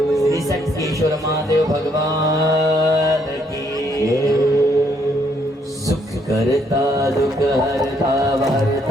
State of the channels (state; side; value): normal; both; correlation 0.70